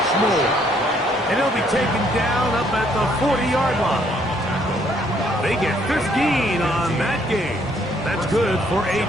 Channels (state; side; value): normal; both; correlation 0.67